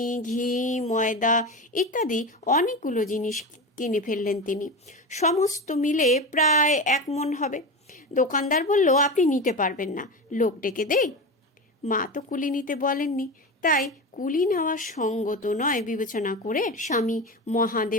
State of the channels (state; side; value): normal; both; correlation 0.23